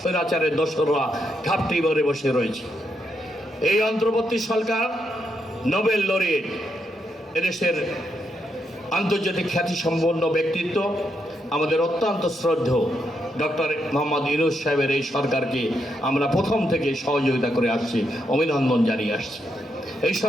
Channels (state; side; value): normal; both; correlation 0.80